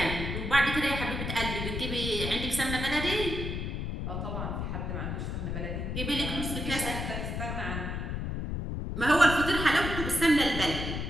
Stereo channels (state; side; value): noise; left; rumble, 3 dB below the sound